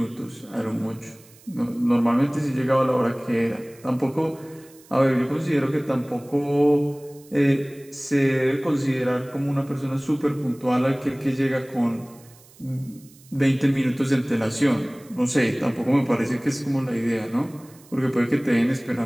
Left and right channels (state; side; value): noise; right; hiss, 25 dB below the sound